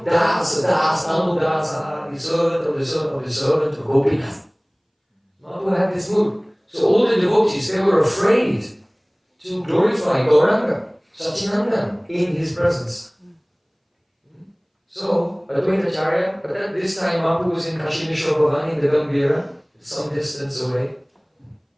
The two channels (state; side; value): identical; both; correlation 1.00